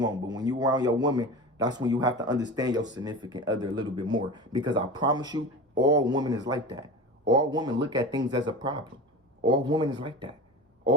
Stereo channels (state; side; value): normal; both; correlation 0.31